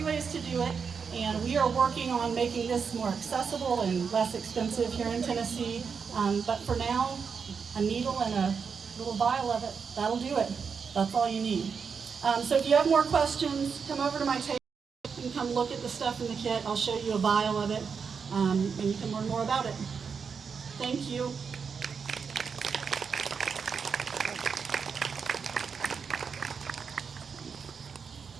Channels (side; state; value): left; quieter; 6.0 dB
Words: ways to do it, and we are working on making this more accessible and less expensive here in Tennessee. But for now, a needle and a little vial of it, that'll do it. That's all you need. So if you have more questions, come over to my table. You can come look at the stuff in the kit. I'll show you a vial of it, and you can learn more about it. Thank you.